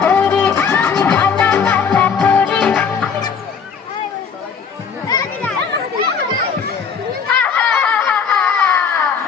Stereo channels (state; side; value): quieter; right; 6.4 dB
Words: করি, আমি ডানা কাটা করি।